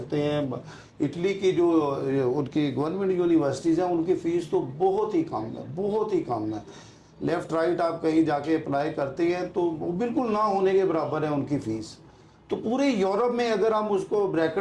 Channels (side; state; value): both; identical; correlation 1.00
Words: हैं। इटली की जो उनकी गवर्नमेंट यूनिवर्सिटीज़ हैं उनकी फ़ीस तो बहुत ही कम है, बहुत ही कम है। लेफ़्ट राइट आप कहीं जाके अप्लाई करते हैं तो वो बिल्कुल ना होने के बराबर है उनकी फ़ीस। तो पूरे यूरोप में अगर हम उसको